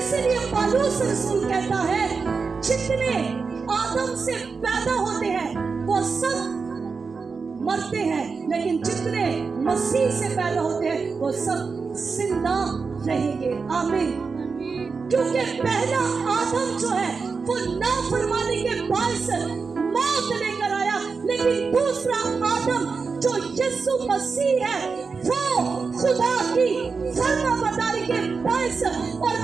पौलुस रसूल कहता है, जितने आदम से पैदा होते हैं वो सब मरते हैं, लेकिन जितने मसीह से पैदा होते हैं वो सब जिंदा रहेंगे। आमीन। क्योंकि पहला आदम जो है वो नाफरमानी के बायस मौत लेकर आया, लेकिन दूसरा आदम जो यीशु मसीह है वो खुदा की फरमाबरदारी के बायस और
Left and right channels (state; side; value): quieter; left; 4.9 dB